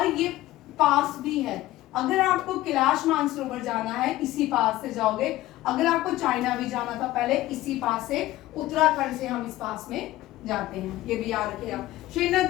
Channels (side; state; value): right; quieter; 16.2 dB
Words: ये पास भी है। अगर आपको कैलाश मानसरोवर जाना है इसी पास से जाओगे, अगर आपको चाइना भी जाना था पहले इसी पास से, उत्तराखंड से हम इस पास में जाते हैं, ये भी याद रखिएगा।